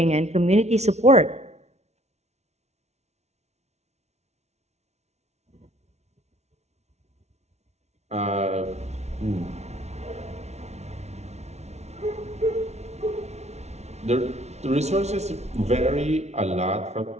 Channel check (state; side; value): late; left; 0.32 ms